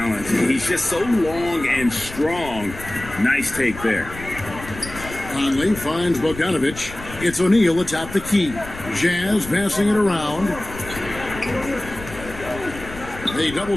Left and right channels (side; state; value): left; noise; rumble, 14 dB below the sound